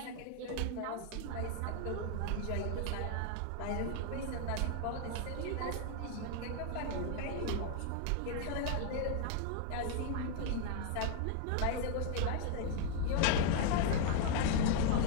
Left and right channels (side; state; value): both; different; correlation 0.00